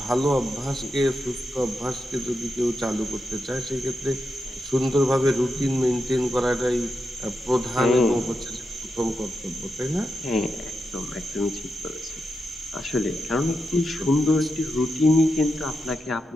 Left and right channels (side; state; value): both; normal; correlation 0.87